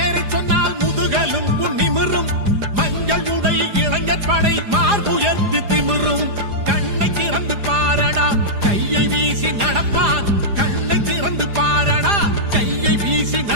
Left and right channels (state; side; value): late; left; 4.9 ms